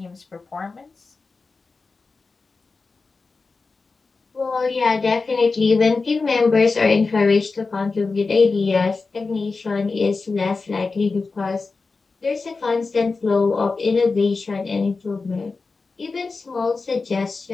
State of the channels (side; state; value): right; quieter; 4.1 dB